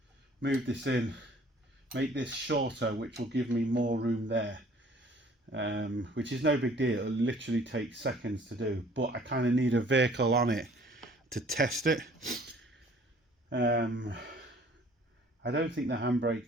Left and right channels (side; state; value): both; normal; correlation 0.54